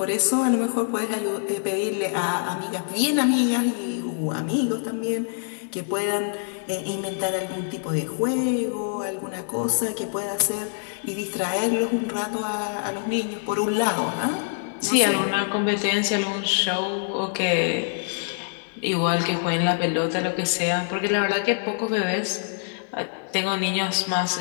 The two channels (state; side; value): silent; right; 62 dB below the other